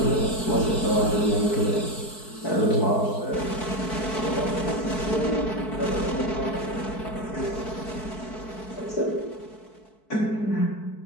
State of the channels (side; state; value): right; late; 4.6 ms